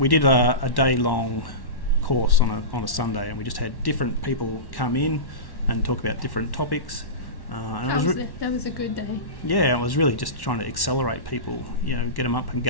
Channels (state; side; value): late; right; 1.1 ms